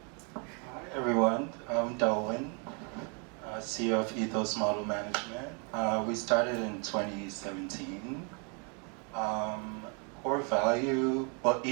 Hi everyone, I'm Delwin, CEO of Ethos Model Management. We started in 2017. core value, well,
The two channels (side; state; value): left; quieter; 36.5 dB